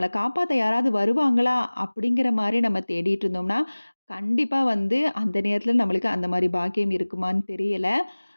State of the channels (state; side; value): inverted; both; correlation -1.00